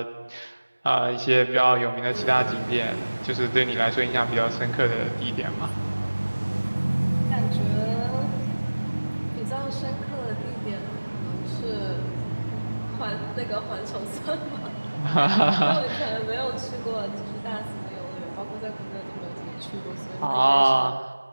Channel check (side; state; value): both; inverted; correlation -1.00